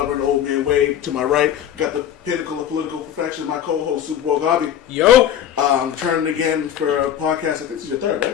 the Old Man Wade. To my right, got the pinnacle of political perfection, my co-host, Super Bowl Garvey. Yo! Returning again for a podcast. I think this is your third,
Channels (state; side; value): quieter; right; 10.1 dB